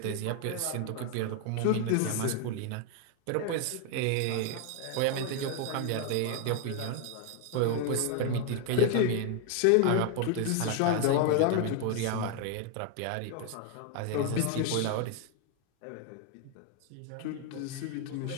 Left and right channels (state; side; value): different; both; correlation 0.00